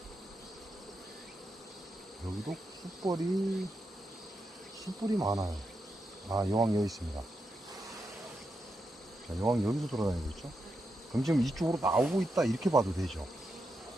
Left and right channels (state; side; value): normal; both; correlation 0.85